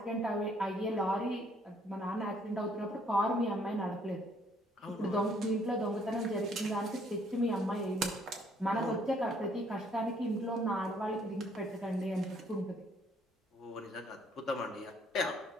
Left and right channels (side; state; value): both; normal; correlation 0.64